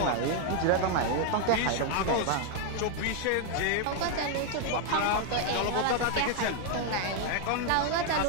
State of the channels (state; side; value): different; both; correlation 0.01